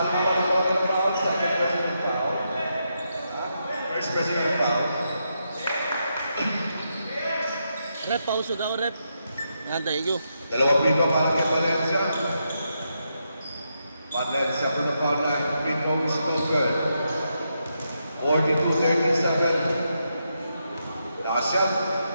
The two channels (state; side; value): inverted; both; correlation -0.83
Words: na foul. Second president foul. First president foul. Rep, pauso daw, rep. Yan, thank you. Dalawang free throw para kay Valencia. Valencia for the foul line. Free throw is no good. 42-37. Last shot.